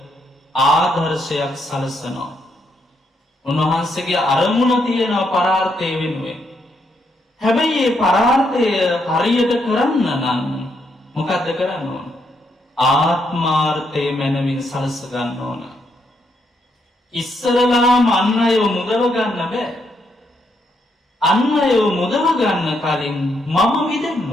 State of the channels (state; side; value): normal; both; correlation 0.77